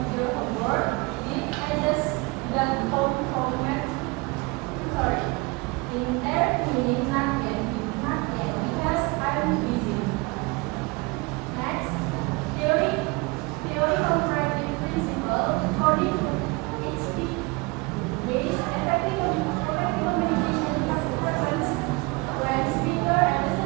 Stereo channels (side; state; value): left; quieter; 26.3 dB